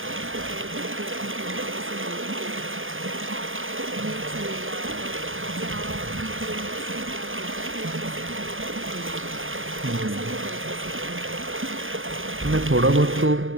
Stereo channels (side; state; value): left; late; 0.59 ms